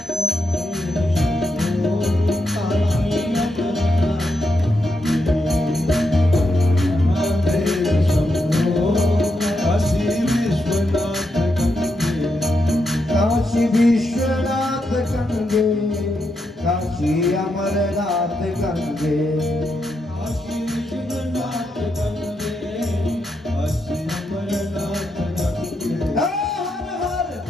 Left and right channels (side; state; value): both; normal; correlation 0.83